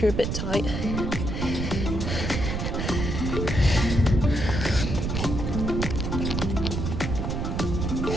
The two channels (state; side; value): noise; right; rumble, 2 dB below the sound